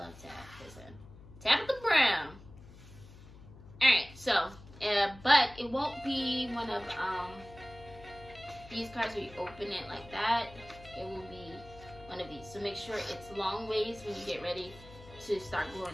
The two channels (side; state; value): left; noise; hum, 19 dB below the sound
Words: Tab. Listen, Tabitha Brown. Alright, so, but it won't be one of these cards where you open it like that. It will be one of these. So make sure it's long ways when you get ready to start